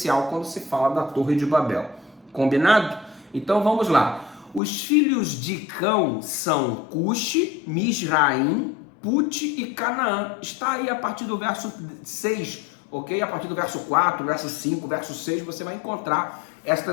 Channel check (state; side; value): drops out; right; at 4.6 s